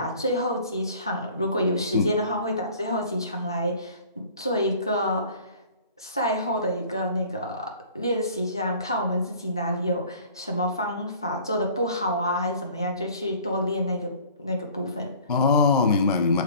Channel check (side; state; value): both; inverted; correlation -0.49